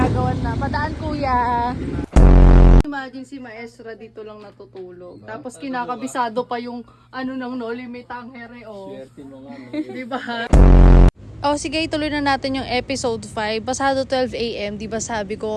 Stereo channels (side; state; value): both; identical; correlation 1.00